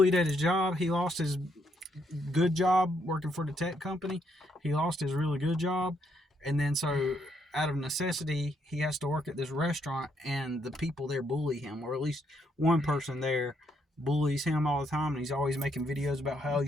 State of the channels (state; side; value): normal; both; correlation 0.74